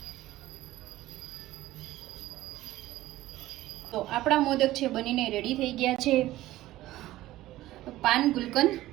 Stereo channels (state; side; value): quieter; left; 15.9 dB